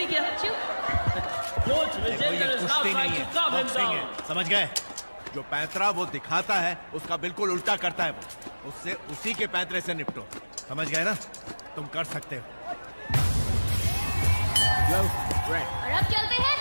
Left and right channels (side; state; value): both; inverted; correlation -1.00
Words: किया. Coach Vijender is now trying to calm him down. समझ गए? जो पैंतरा वो दिखाता है उसका बिल्कुल उल्टा करता है वो. उससे उसी के पैंतरे से निपटो. समझ गए ना? तुम कर सकते हो. और अब चलते हैं